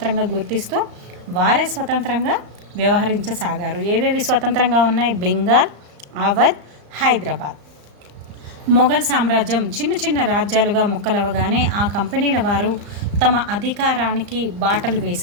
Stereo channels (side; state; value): left; late; 35 ms